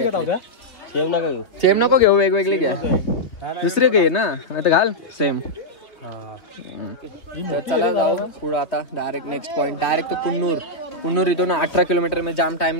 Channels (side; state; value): right; late; 3.4 ms